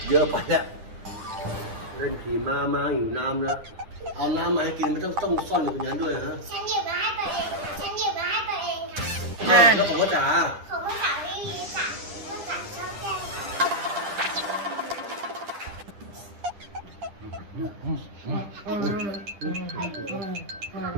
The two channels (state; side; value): late; left; 10 ms